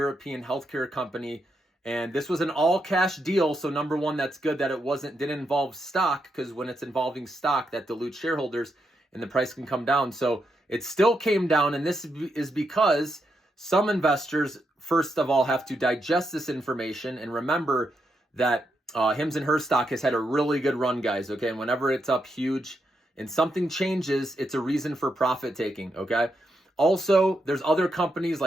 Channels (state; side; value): normal; both; correlation 0.82